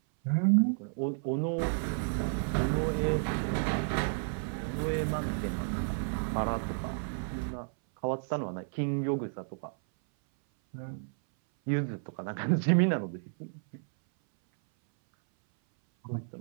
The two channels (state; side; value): silent; left; 57 dB below the other